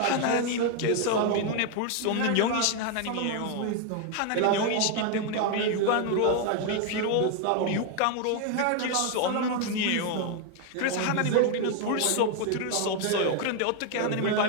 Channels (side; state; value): both; different; correlation 0.01